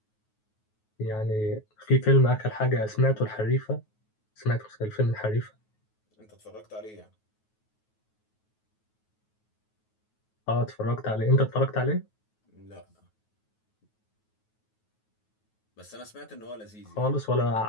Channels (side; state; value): right; late; 9.3 ms